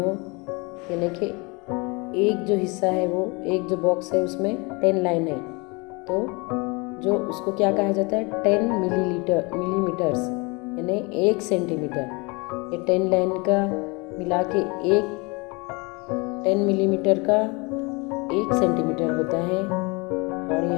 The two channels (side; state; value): right; quieter; 28.3 dB